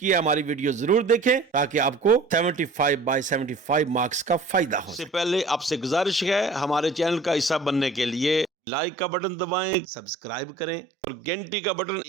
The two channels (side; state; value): left; drops out; at 8.5 s